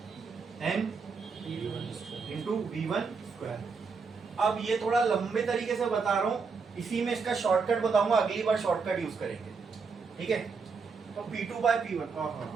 N into V1 square. अब ये थोड़ा लंबे तरीके से बता रहा हूं, इसी में इसका शॉर्टकट बताऊंगा, अगली बार शॉर्टकट यूज करेंगे, ठीक है? तो P2 बाय P1,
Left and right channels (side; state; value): left; quieter; 5.0 dB